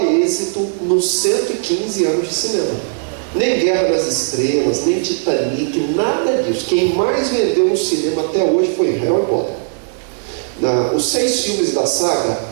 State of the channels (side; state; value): left; silent; 68 dB below the other